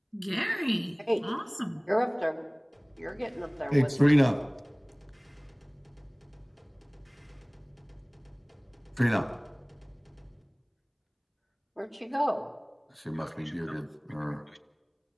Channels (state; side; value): identical; both; correlation 1.00